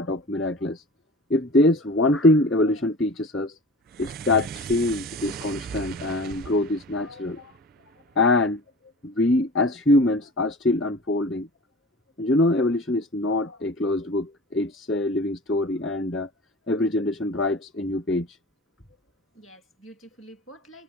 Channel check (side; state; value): both; normal; correlation 0.38